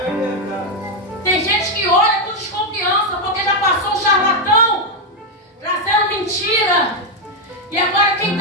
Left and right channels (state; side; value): normal; both; correlation 0.03